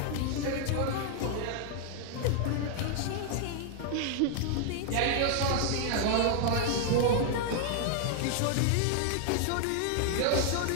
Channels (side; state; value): both; different; correlation 0.00